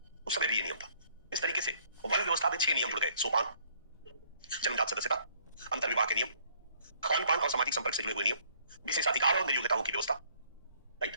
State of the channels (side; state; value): both; inverted; correlation -0.62